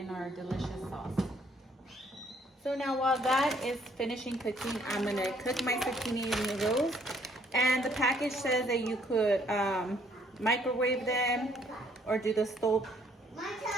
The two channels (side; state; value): both; normal; correlation 0.65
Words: our delicious sauce. So now while that is finishing cooking, I'm gonna cook my zucchini noodles. And the package says that you could microwave them or do the stove